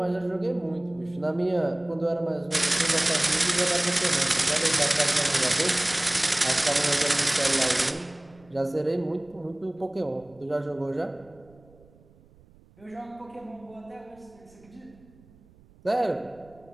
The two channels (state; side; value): noise; right; rumble, 27 dB below the sound